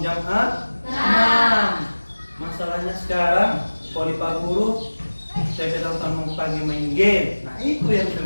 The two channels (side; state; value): both; inverted; correlation -1.00